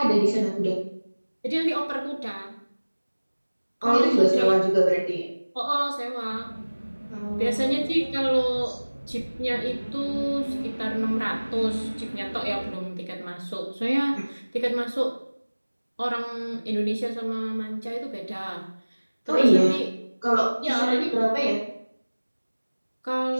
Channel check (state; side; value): inverted; both; correlation -1.00